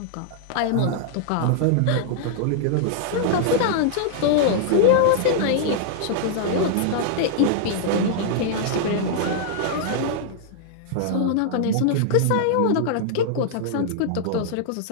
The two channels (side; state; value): both; different; correlation -0.01